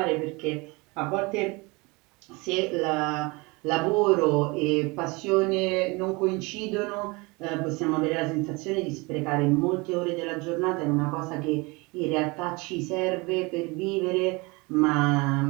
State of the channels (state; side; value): quieter; left; 26.1 dB